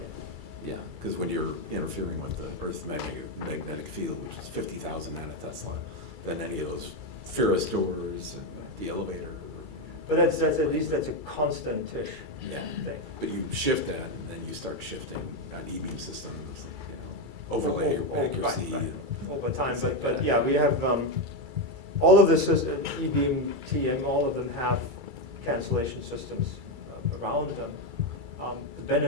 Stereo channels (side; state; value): left; late; 2.3 ms